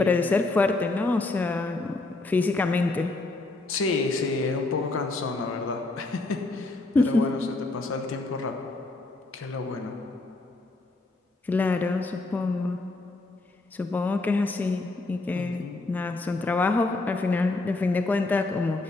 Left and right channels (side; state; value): right; quieter; 3.2 dB